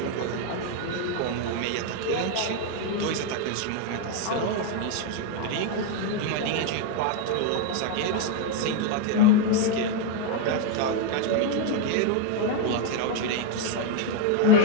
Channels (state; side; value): different; both; correlation 0.01